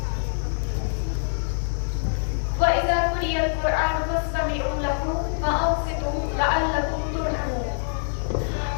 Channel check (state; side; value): silent; right; digital silence